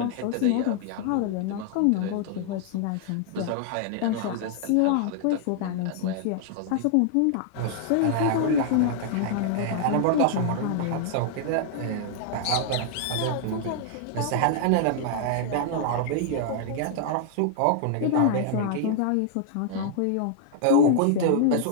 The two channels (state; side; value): different; both; correlation -0.01